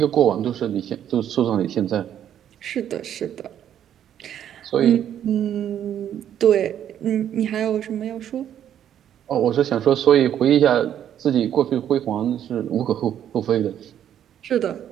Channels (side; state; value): left; quieter; 10.1 dB